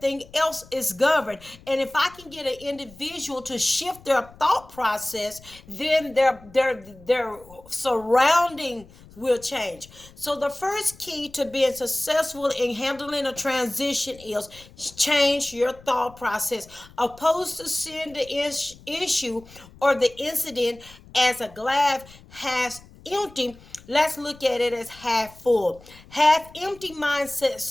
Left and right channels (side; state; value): left; noise; rumble, 22 dB below the sound